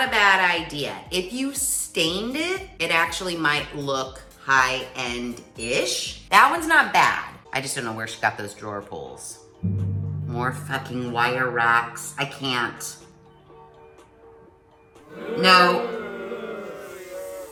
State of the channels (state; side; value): identical; both; correlation 1.00